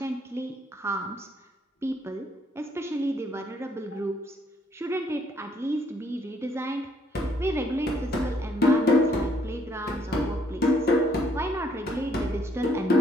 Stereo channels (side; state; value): both; normal; correlation 0.68